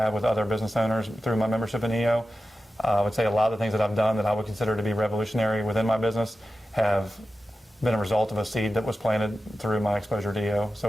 with other business owners through my membership in EO. I would say a lot of the things that I've done that I would consider to be revolutionary within my business have been a result of a seed that was planted through my exposure to EO.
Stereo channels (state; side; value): normal; both; correlation 0.93